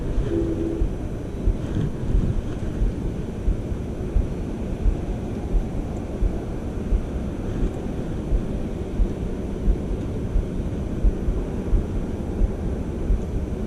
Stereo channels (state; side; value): identical; both; correlation 1.00